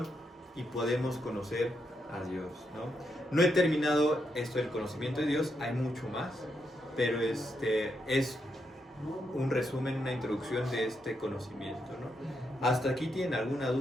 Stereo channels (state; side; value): normal; both; correlation 0.81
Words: y podemos conocer a Dios, ¿no? No he terminado esto del conocimiento de Dios, hay mucho más, pero es un resumen, una introducción de este conocimiento, ¿no? ¿Hasta aquí tienen alguna